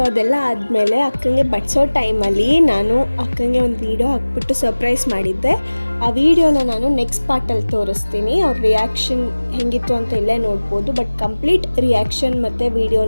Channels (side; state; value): both; inverted; correlation -1.00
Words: ಅದೆಲ್ಲ ಆದಮೇಲೆ ಅಕ್ಕಂಗೆ ಬಡಿಸೋ ಟೈಮಲ್ಲಿ ನಾನು ಅಕ್ಕಂಗೆ ಒಂದು ವೀಡಿಯೋ ಹಾಕ್ಬಿಟ್ಟು ಸರ್ಪ್ರೈಸ್ ಮಾಡಿದ್ದೆ. ಆ ವಿಡಿಯೋನ ನಾನು ನೆಕ್ಸ್ಟ್ ಪಾರ್ಟಲ್ಲಿ ತೋರಿಸ್ತೀನಿ. ಅವ್ರ ರಿಯಾಕ್ಷನ್ ಹೆಂಗಿತ್ತು ಅಂತ ಇಲ್ಲೇ ನೋಡ್ಬೋದು. ಬಟ್ ಕಂಪ್ಲೀಟ್ ರಿಯಾಕ್ಷನ್ ಮತ್ತು